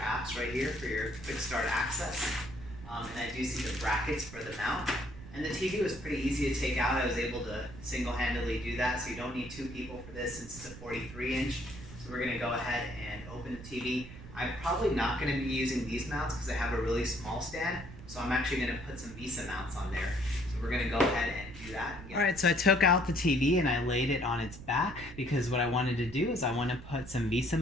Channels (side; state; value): right; noise; rumble, 14 dB below the sound